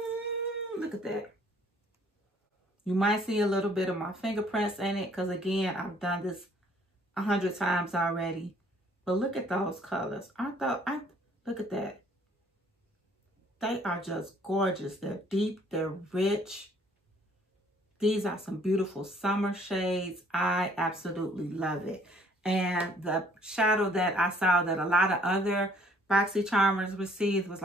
Look at that. You might see a little bit of my fingerprints in it, because again, I've done this 100 times already. But look at those colors. Look at that. They are just gorgeous. They're deep, they're rich. These are some beautiful summer shades. I absolutely love it. And the shadow that I saw that a lot of other BoxyCharmers received was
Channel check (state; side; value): normal; both; correlation 0.60